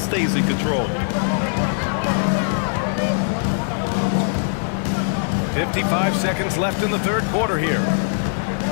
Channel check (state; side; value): silent; right; 57 dB below the other